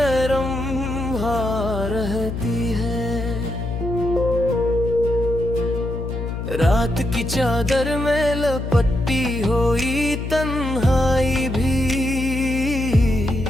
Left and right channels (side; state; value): left; noise; hum, 5 dB below the sound